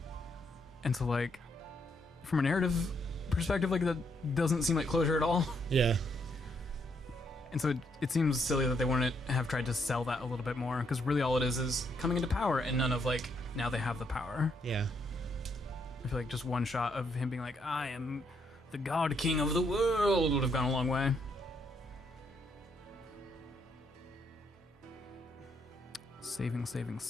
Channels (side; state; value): both; normal; correlation 0.74